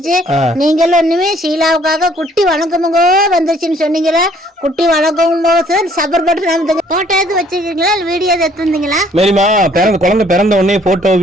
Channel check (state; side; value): normal; both; correlation 0.61